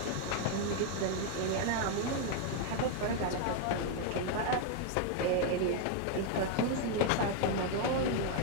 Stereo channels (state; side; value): different; both; correlation 0.00